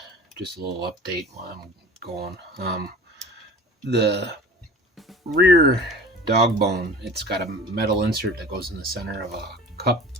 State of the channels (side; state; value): both; normal; correlation 0.40